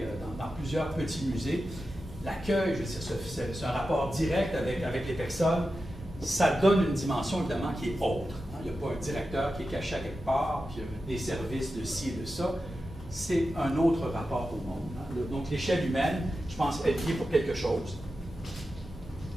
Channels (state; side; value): normal; both; correlation 0.91